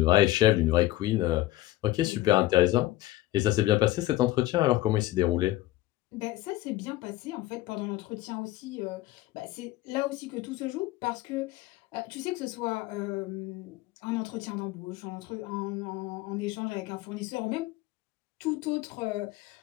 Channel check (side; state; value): right; quieter; 16.4 dB